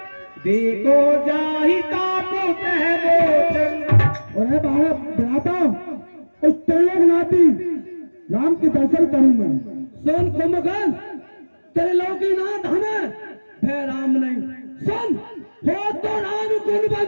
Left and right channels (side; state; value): both; inverted; correlation -1.00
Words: देखो जाहिता पुत है मोचन। और भ्राता, उस त्रिलोकनाथी राम के दर्शन करूंगा। सुन कुंभकर्ण, त्रिलोकीनाथ हमें भय राम नहीं। सुन, हो तो राम